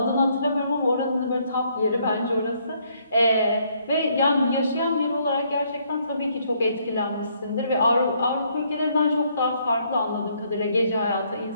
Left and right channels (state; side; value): inverted; both; correlation -0.69